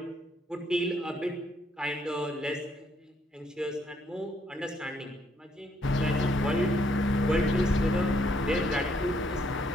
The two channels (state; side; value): normal; both; correlation 0.71